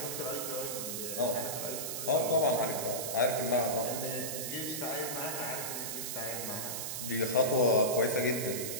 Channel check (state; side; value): noise; right; hiss, 4 dB below the sound